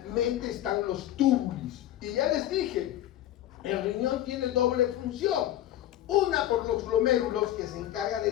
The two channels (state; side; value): quieter; right; 12.9 dB